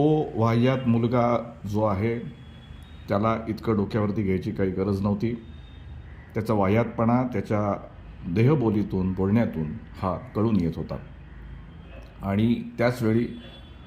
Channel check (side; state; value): both; identical; correlation 1.00